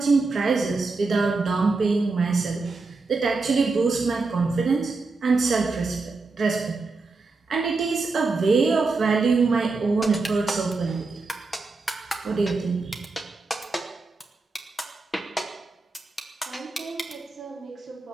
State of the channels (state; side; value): quieter; left; 3.8 dB